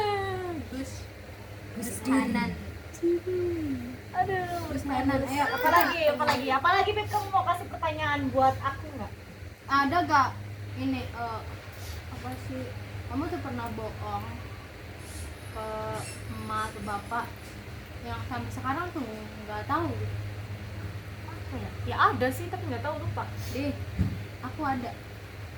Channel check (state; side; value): identical; both; correlation 1.00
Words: Gus kanan Aduh, Gus kanan ayo apalagi Beb, kamu mau kasih pertanyaan buat aku nggak? ada gak ini Apa sih? Kamu tuh pernah bohong ke emak atau bapak yang sampai sekarang tuh nggak tahu? Apa ya? Ya ada sih tapi nggak tahu, lupa. Deh, aku ada